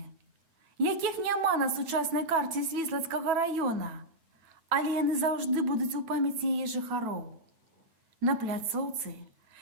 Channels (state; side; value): late; left; 9.1 ms